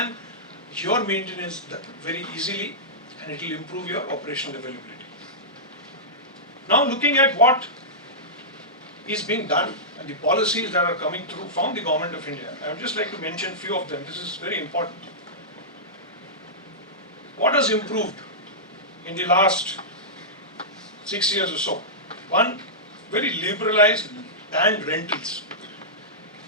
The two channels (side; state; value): both; normal; correlation -0.15